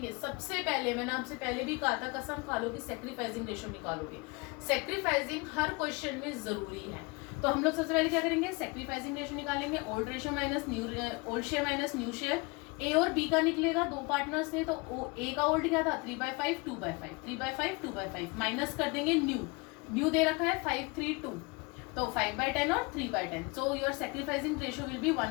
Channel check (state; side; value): quieter; right; 27.5 dB